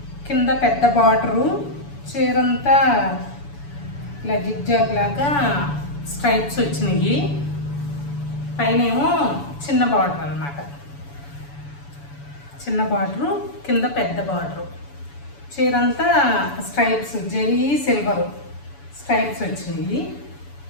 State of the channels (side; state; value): right; late; 7.0 ms